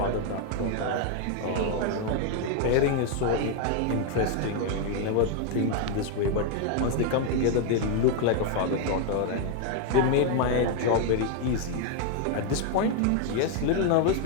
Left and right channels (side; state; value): both; different; correlation 0.00